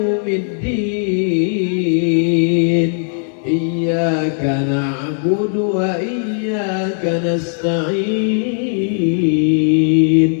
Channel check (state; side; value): silent; right; digital silence